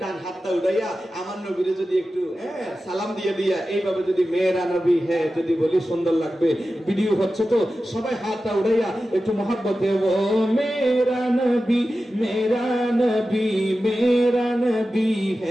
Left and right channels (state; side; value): normal; both; correlation 0.93